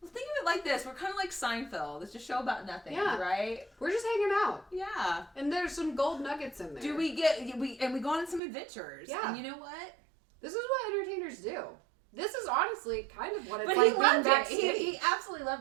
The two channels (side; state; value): left; drops out; at 8.4 s